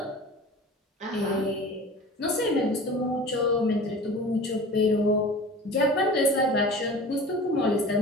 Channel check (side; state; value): both; normal; correlation 0.38